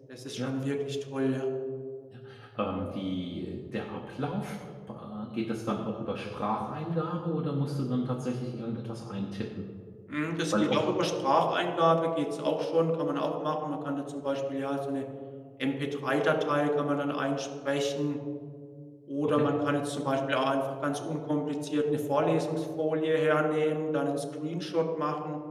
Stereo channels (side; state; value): both; identical; correlation 1.00